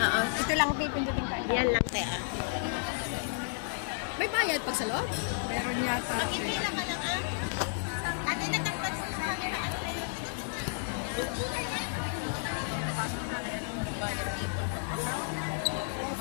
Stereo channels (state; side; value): silent; right; digital silence